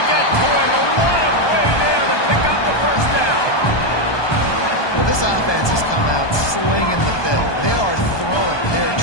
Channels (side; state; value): right; late; 1.2 ms